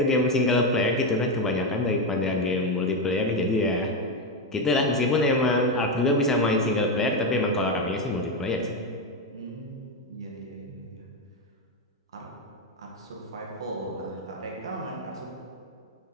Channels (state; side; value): normal; both; correlation 0.09